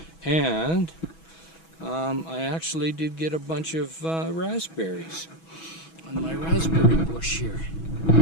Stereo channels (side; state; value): right; late; 6.1 ms